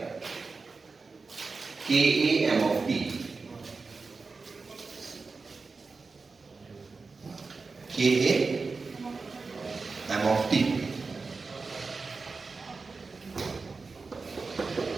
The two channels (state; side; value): quieter; left; 4.3 dB